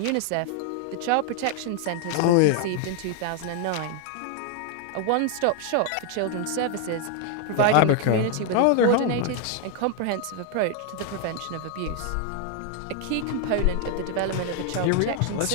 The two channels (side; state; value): both; different; correlation 0.00